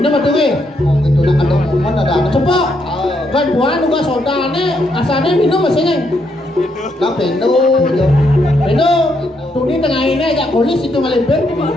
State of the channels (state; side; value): normal; both; correlation 0.76